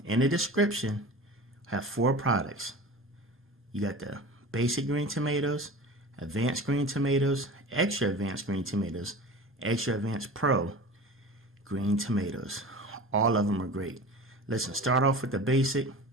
In the description, I have 4 products. You got the basic green tomatoes, advanced green tomatoes, extra advanced green tomatoes, extra advanced pro green tomatoes. All of them are great. Listen, start off with the basic.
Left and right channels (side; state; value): both; normal; correlation 0.36